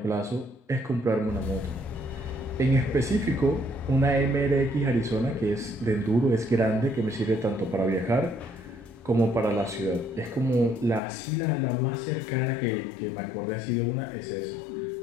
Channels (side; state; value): right; drops out; at 11.0 s